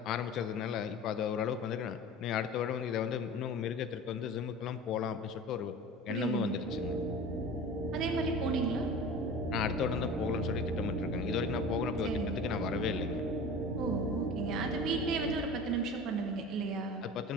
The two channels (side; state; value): both; normal; correlation 0.36